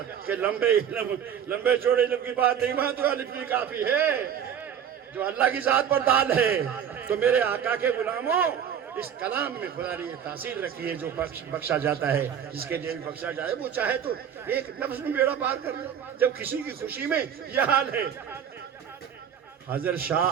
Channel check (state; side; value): quieter; left; 8.6 dB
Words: کہ لمبے چوڑے علم کی بات نہیں, وہاں تو الف بھی کافی ہے جو اللہ کی ذات پر دال ہے. تو میرے آقا کے غلاموں, اس کلام میں خدا نے یہ تاثیر رکھی ہے جو بخشا جاتا ہے. جس کے لیے بھی بخشا جائے وہ چاہے تو ایک لفظ میں بیڑا پار کر لے. جب کسی کی خوشی میں یہ حال ہے. حضرت